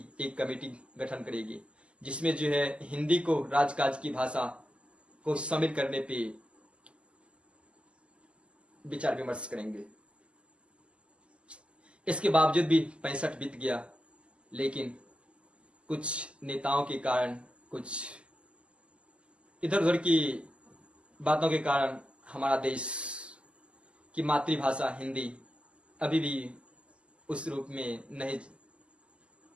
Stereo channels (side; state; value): left; late; 0.054 ms